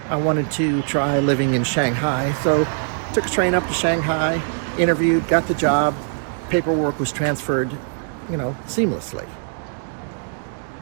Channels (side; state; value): left; silent; digital silence